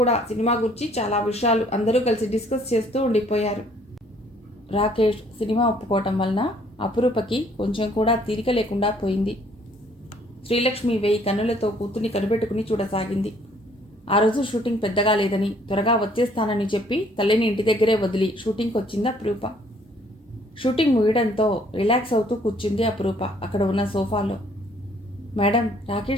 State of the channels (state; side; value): normal; both; correlation 0.61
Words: సినిమా గురించి చాలా విషయాలు అందరూ కలిసి డిస్కస్ చేస్తూ ఉండిపోయారు. రాకేష్ సినిమా ఒప్పుకోవటం వలన అపురూపకి కొంచెం కూడా తీరిక లేకుండా పోయింది. శ్రీలక్ష్మి 1000 కన్నులతో కూతుర్ని కనిపెట్టుకుని చూడసాగింది. ఆ రోజు షూటింగ్ పెద్దగా లేదని త్వరగా వచ్చేస్తానని చెప్పి తల్లిని ఇంటి దగ్గరే వదిలి షూటింగ్కి వచ్చింది అపురూప. షూటింగ్ ముగియడంతో రిలాక్స్ అవుతూ కూర్చుంది అపురూప అక్కడ ఉన్న సోఫాలో. మేడం,